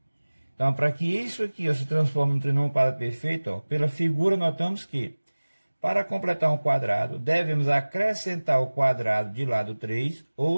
Então, para que isso aqui, ó, se transforme em um trinômio quadrado perfeito, ó, pela figura notamos que, para completar um quadrado, devemos acrescentar o quadrado de lado 3,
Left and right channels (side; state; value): both; inverted; correlation -1.00